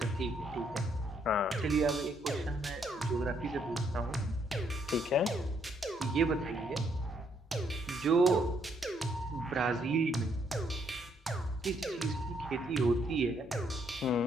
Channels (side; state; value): both; normal; correlation 0.72